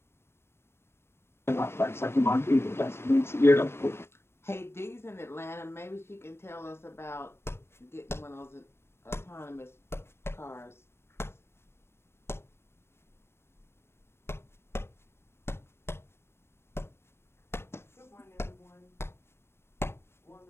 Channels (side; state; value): right; late; 0.12 ms